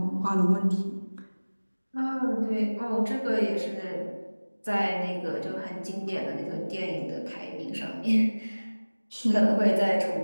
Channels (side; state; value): both; inverted; correlation -1.00